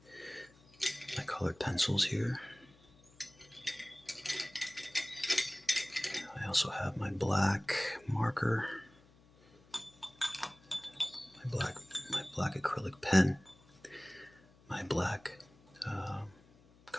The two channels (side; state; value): left; noise; hum, 27 dB below the sound